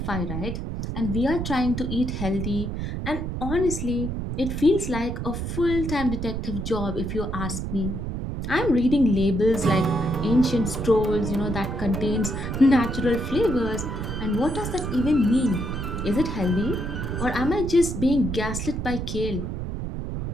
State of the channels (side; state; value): right; noise; rumble, 4 dB below the sound